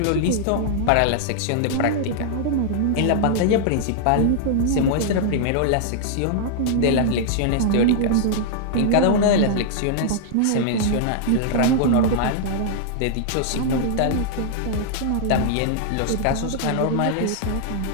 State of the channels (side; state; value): both; different; correlation -0.01